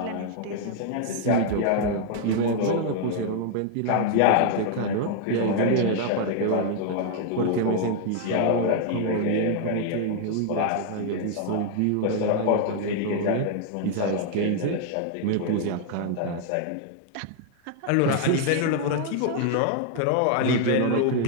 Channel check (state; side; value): different; both; correlation 0.00